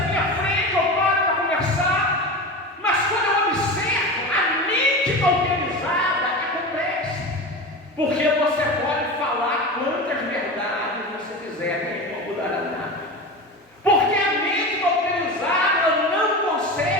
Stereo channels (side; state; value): both; normal; correlation 0.27